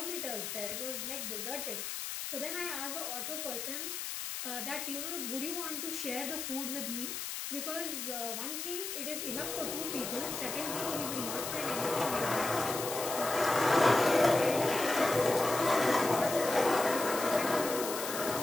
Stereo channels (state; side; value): noise; left; hiss, 5 dB below the sound